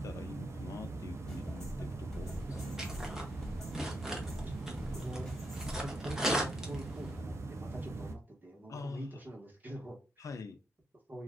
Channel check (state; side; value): normal; both; correlation 0.81